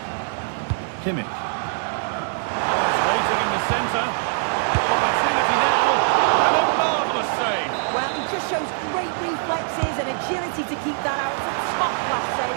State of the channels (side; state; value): left; silent; digital silence